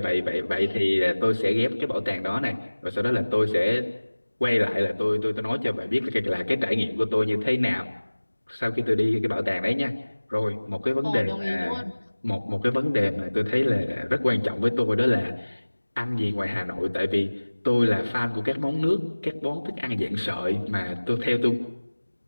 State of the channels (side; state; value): both; inverted; correlation -1.00